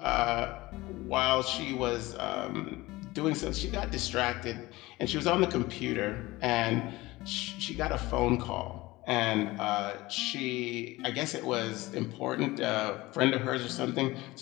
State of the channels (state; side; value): quieter; right; 19.9 dB